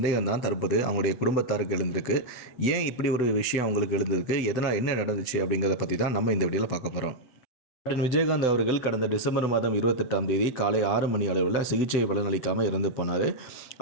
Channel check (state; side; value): late; right; 8.2 ms